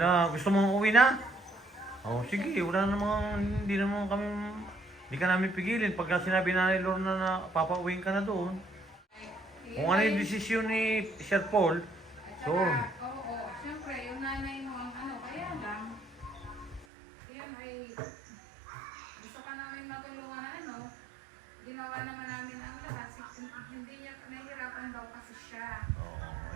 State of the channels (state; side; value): drops out; left; at 16.9 s